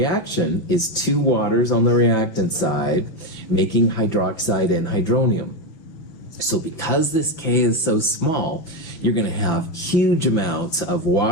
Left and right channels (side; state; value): right; late; 5.9 ms